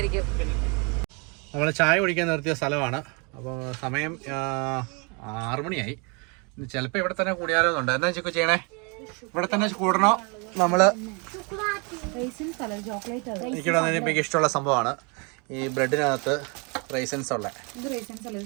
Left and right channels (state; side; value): quieter; left; 32.5 dB